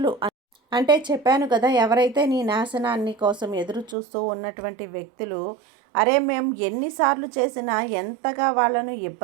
అంటే చెప్పాను కదా, ఎవరైతే నీ నాశనాన్ని కోసం ఎదురు చూస్తూ ఉన్నటువంటి వ్యక్తులు, అరే మేము ఎన్నిసార్లు చేసినా ఎంతగా వాళ్ళను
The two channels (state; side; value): drops out; left; at 4.0 s